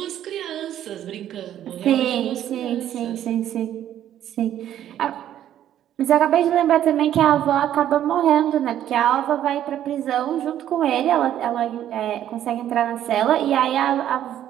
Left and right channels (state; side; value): quieter; left; 11.3 dB